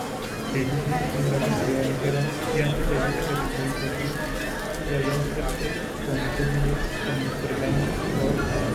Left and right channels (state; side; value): identical; both; correlation 1.00